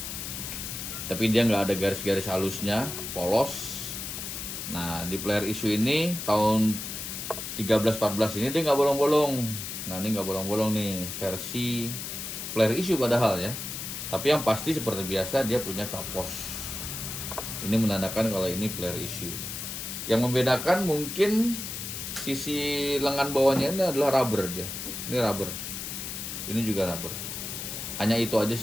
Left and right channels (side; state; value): left; noise; hiss, 6 dB below the sound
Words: tapi dia nggak ada garis-garis halusnya, polos. Nah di player issue ini tahun 13-14 ini dia nggak bolong-bolong. Nah ini nggak bolong-bolong nih versi player issue padahal ya. Tapi yang pasti seperti biasa dia punya capos. Ini menandakan kalau ini player issue. Yang membedakan mungkin sisi lengan bawahnya ini adalah rubber dia. Ini rubber. Ini juga rubber. Hanya itu aja